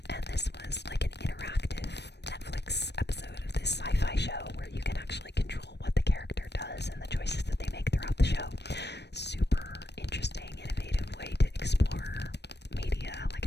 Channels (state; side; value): late; right; 0.50 ms